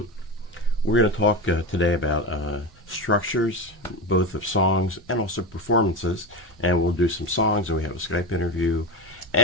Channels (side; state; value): both; normal; correlation 0.20